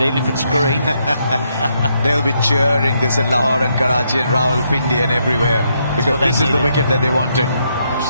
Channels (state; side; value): inverted; both; correlation -0.77